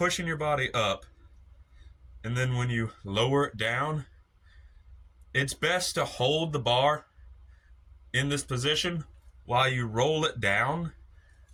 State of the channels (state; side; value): identical; both; correlation 1.00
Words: your body up and then when you lower it down, it's best to hold the bar in this position while you roll it down